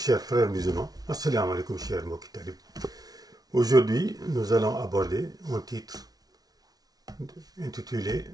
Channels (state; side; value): late; left; 0.19 ms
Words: frères musulmans. Assalamu alaikum, chers mokitalib. Aujourd'hui, nous allons aborder un titre intitulé